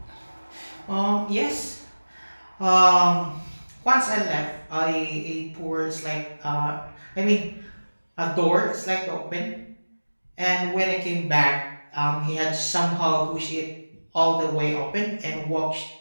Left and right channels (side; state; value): both; inverted; correlation -1.00